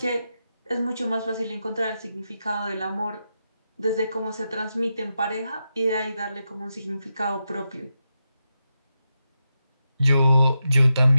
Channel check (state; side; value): inverted; both; correlation -0.88